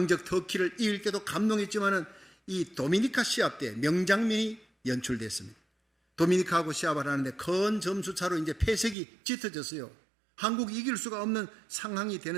터키를 이길 때도 감동했지만은 이 도미니카 시합 때 명장면이 연출됐습니다. 도미니카하고 시합을 하는데 큰 점수 차로 이제 패색이 짙어졌어요. 한국이 이길 수가 없는 상황이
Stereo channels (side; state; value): left; drops out; at 9.0 s